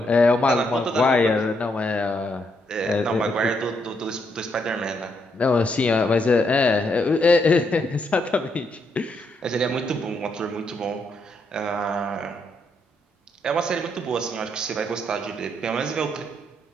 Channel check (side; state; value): both; normal; correlation 0.76